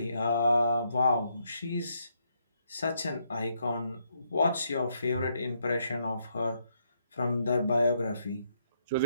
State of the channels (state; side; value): inverted; both; correlation -0.76